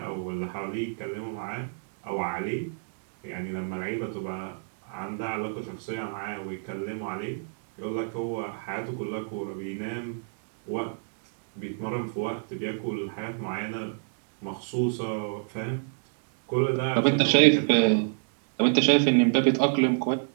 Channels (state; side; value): silent; left; digital silence